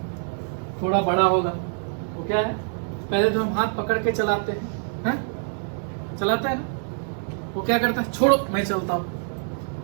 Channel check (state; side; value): silent; left; 62 dB below the other